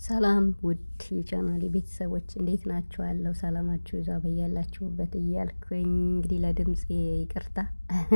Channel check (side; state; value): both; inverted; correlation -1.00